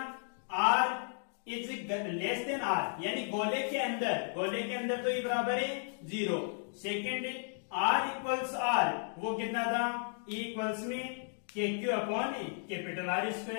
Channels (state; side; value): silent; right; 55 dB below the other